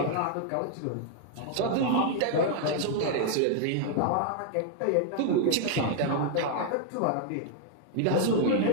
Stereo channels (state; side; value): different; both; correlation 0.00